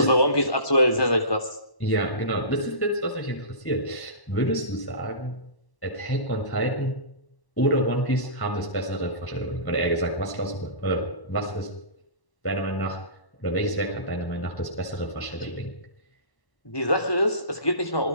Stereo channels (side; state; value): right; late; 1.0 ms